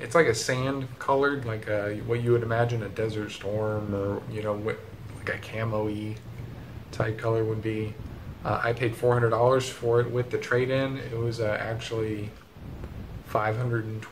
like a sand colored, like what you would imagine a Desert Storm or, you know, like a camo-y type color would be. I paid $400 for it with the trade-in. It was actually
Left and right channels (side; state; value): both; identical; correlation 1.00